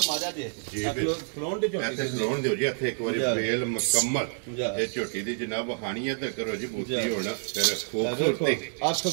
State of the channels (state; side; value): silent; left; digital silence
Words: ਮਾਰਿਆ ਜੇ ਜੀ ਖਲੋਨ ਦੇ ਝੋਟੀ ऐसे खलोन दियो जी ਇੱਥੇ ਇੱਕ ਵਾਰੀ वेल मुकम्मल ਇਹ ਝੋਟੀ ਦੀ ਜਨਾਬ ਹਾਨੀਆਂ ਤੇ ਕਰੋ ਜੀ ਬੂਤੀ ਹੋਣਾ ਫਿਰ ਖੂਬਸੂਰਤੀ ਅੱਖ